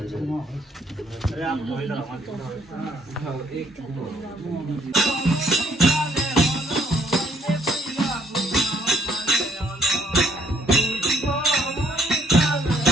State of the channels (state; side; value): normal; both; correlation 0.67